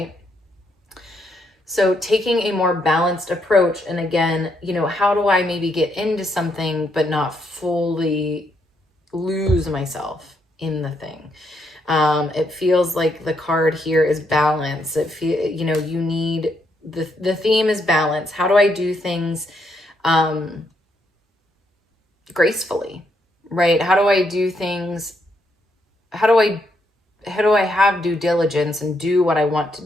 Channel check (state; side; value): normal; both; correlation 0.76